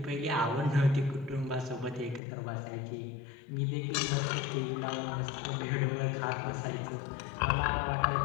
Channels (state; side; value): drops out; right; at 2.2 s